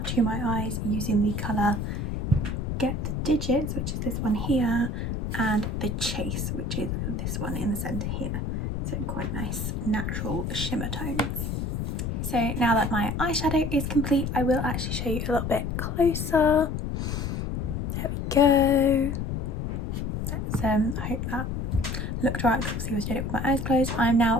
to my eyes using the colour Get the Digits, which is this one here, and the Chase, which is this one in the centre here. So quite nice natural shimmer tones. So now that my eyeshadow is complete, I will actually show you a little bit closer. There we go. Let's I hope that looked right, because obviously I was doing it with my eyes closed. I'm now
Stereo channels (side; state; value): left; noise; rumble, 2 dB below the sound